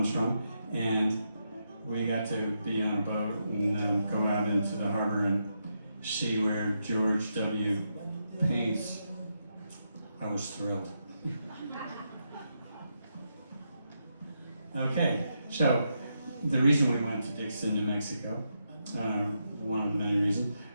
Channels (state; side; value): inverted; both; correlation -0.83